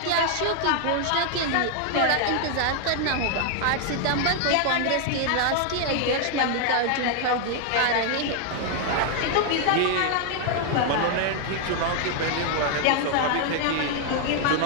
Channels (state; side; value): different; both; correlation 0.00